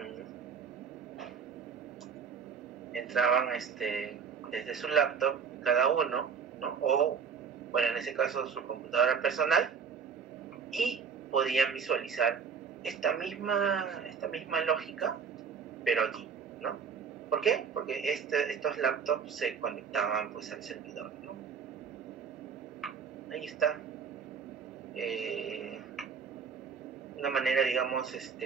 Entraban desde su laptop, cada uno, ¿no? O, bueno, en ese caso su computadora personal, y podían visualizar esta misma lógica, pero aquí, ¿no? ¿Por qué? Porque estos laptops se conectaban pues al servidor, ¿no? Ahí está. Una manera, digamos,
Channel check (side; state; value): left; quieter; 6.3 dB